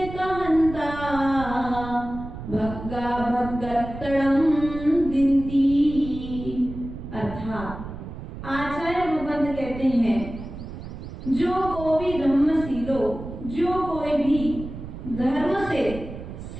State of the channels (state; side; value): noise; right; rumble, 10 dB below the sound